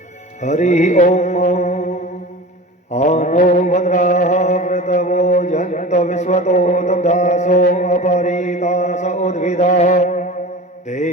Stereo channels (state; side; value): normal; both; correlation 0.35